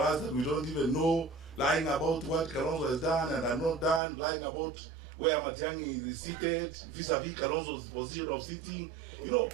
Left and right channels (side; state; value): left; drops out; at 4.0 s